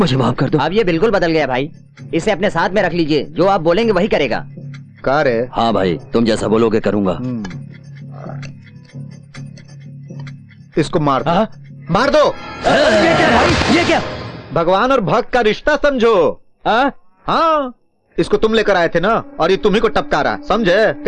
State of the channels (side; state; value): both; identical; correlation 1.00